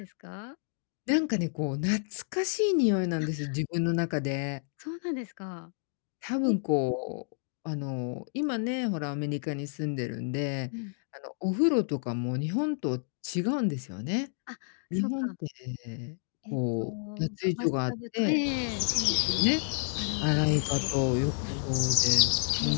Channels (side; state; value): right; silent; digital silence